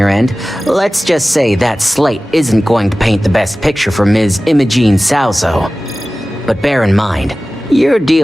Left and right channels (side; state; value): both; normal; correlation 0.97